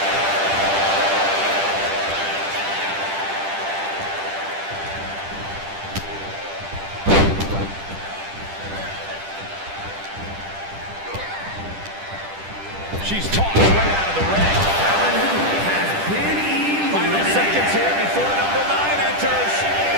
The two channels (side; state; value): left; late; 10 ms